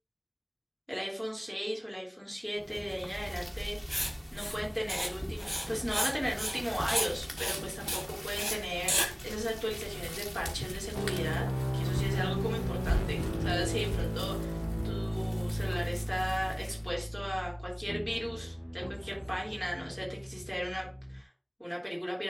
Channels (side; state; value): both; identical; correlation 1.00